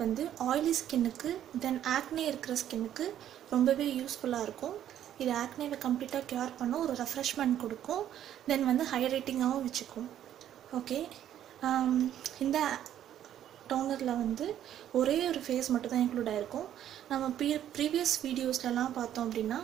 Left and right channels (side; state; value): left; quieter; 11.0 dB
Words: வந்து ஆயிலி ஸ்கின்னுக்கு தென் ஆக்னே இருக்கிற ஸ்கின்னுக்கு ரொம்பவே யூஸ்ஃபுல்லா இருக்கும். இது ஆக்னேவை கம்ப்ளீட்டா கியூர் பண்ண ஒரு ரெஃப்ரெஷ்மென்ட் கொடுக்கும். தென் வந்து ஹைட்ரேட்டிங்காகவும் வச்சுக்கும். ஓகே, இந்த டோனரில் வந்து ஒரே ஒரு ஃபேஸ் மட்டும் தான் இன்க்ளூட் ஆகிருக்கும். நம்ம ப்ரீவியஸ் வீடியோஸ்லலாம் பார்த்தோம் அப்படின்னா